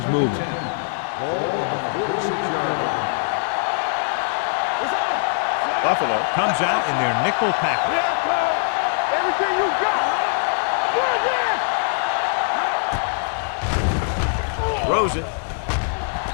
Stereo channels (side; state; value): right; silent; 63 dB below the other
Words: moving. Buffalo comes out in their nickel package. Everything you got. Throws it.